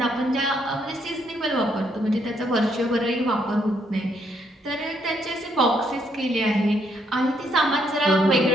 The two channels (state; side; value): normal; both; correlation 0.73